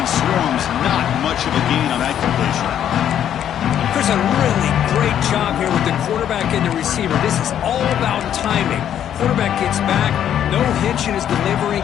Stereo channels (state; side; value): quieter; right; 10.1 dB